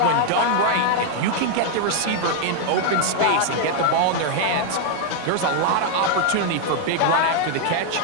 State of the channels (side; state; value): both; different; correlation 0.00